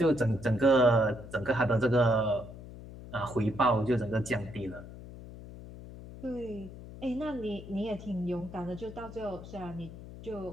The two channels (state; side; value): noise; left; hum, 14 dB below the sound